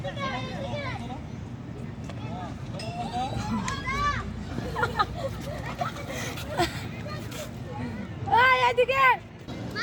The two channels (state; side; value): identical; both; correlation 1.00